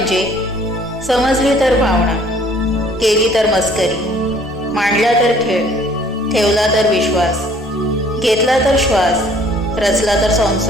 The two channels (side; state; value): both; normal; correlation 0.57